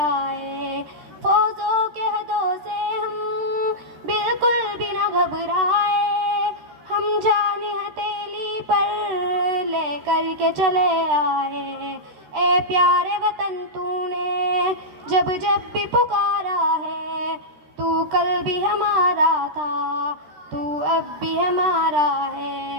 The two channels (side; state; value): left; late; 13 ms